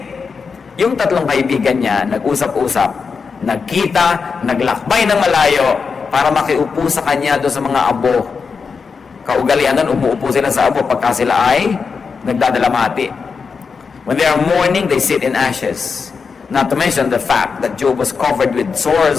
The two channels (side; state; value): right; quieter; 5.3 dB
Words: Yung tatlong kaibigan niya, nag-usap-usap, nagkita, naglakbay ng malayo para makiupo sa kanya doon sa mga abo. Kaugalian nun, umuupo sila sa abo pagka sila ay nagdadalamati. When they are mourning, they sit in ashes. Not to mention the fact that Job was covered with